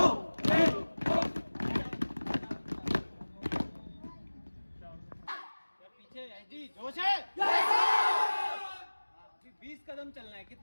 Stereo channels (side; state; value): both; inverted; correlation -1.00